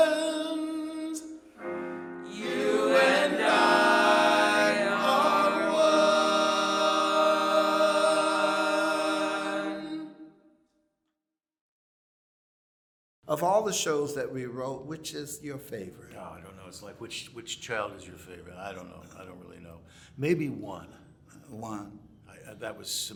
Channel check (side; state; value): both; identical; correlation 1.00